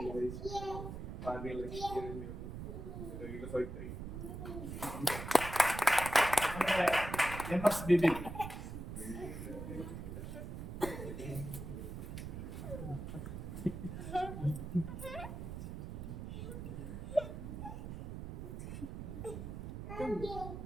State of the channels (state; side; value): noise; right; rumble, 7 dB below the sound